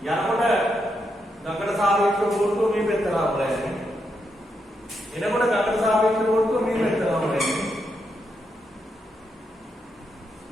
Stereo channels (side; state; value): both; normal; correlation 0.82